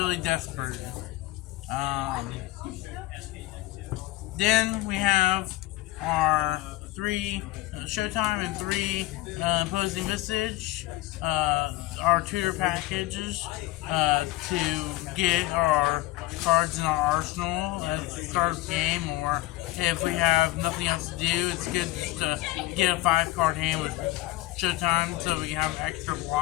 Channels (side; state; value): right; quieter; 18.2 dB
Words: desperate. Then we have our 3 Showtime and 3 Opposing Visage, our tutor packages to get our cards in our arsenal at the start of the game, or if we have nothing else to do, it's good just to get a 5 card hand with Showtime so we can have extra